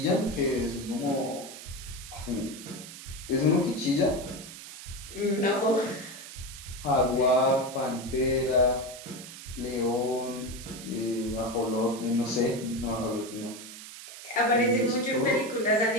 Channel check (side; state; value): right; noise; hiss, 13 dB below the sound